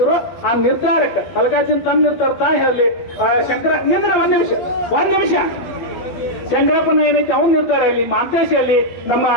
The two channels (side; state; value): right; late; 12 ms